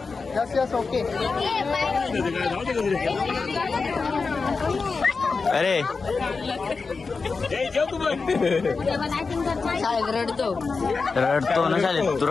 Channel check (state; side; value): quieter; right; 4.5 dB